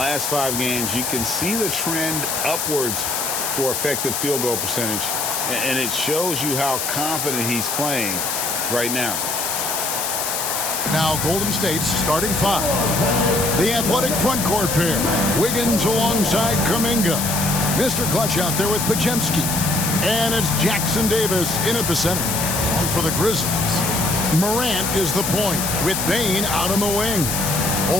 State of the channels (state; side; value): noise; left; hiss, 1 dB below the sound